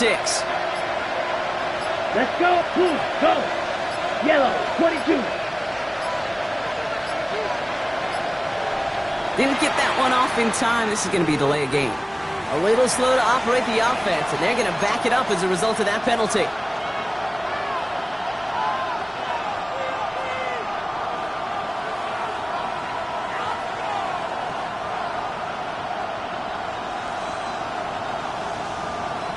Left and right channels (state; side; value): identical; both; correlation 1.00